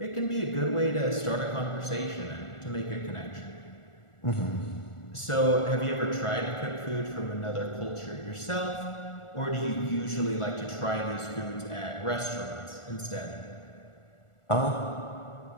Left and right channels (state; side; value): late; right; 1.4 ms